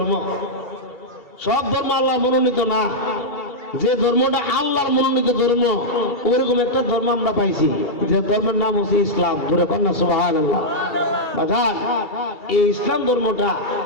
সব ধর্ম আল্লাহর মনোনীত না, যে ধর্মটা আল্লাহর মনোনীত ধর্ম ওইরকম একটা ধর্ম আমরা পাইছি, যে ধর্মের নাম হচ্ছে ইসলাম। ধরে কন্যা সুবহানাল্লাহ। বাজার এই ইসলাম ধর্মটা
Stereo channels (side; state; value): right; late; 2.3 ms